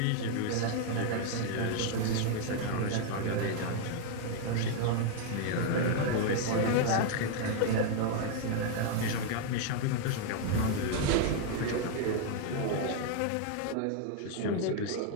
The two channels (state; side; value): different; both; correlation 0.00